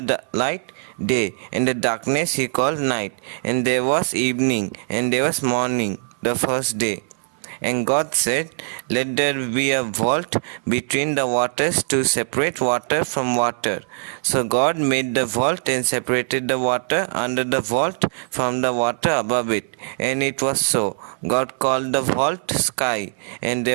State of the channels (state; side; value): silent; left; 58 dB below the other